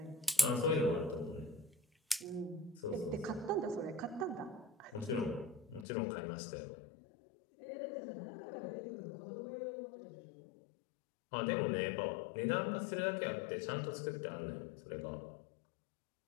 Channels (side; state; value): right; drops out; at 5.9 s